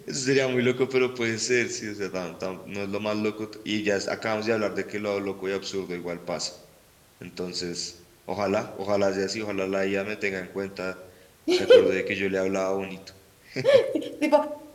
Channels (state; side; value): identical; both; correlation 1.00